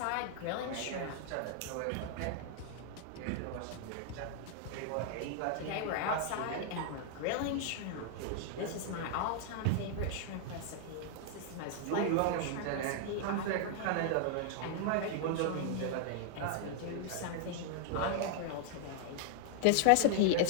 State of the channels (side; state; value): both; different; correlation 0.00